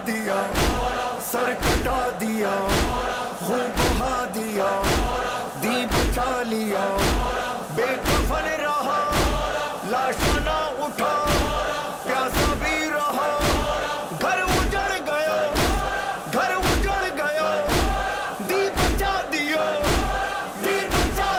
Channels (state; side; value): identical; both; correlation 1.00